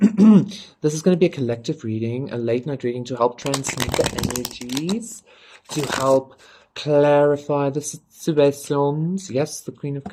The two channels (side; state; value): both; identical; correlation 1.00